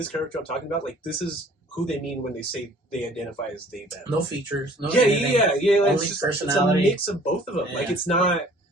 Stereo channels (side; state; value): both; normal; correlation 0.54